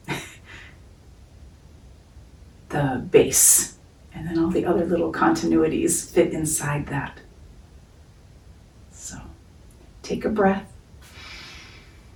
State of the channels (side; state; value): both; identical; correlation 1.00